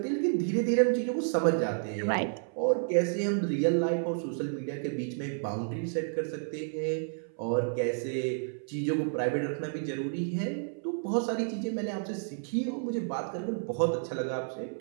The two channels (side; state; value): left; silent; 57 dB below the other